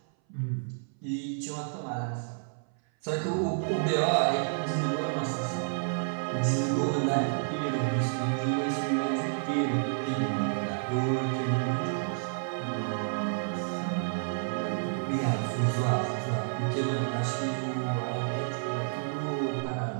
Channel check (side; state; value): left; silent; 57 dB below the other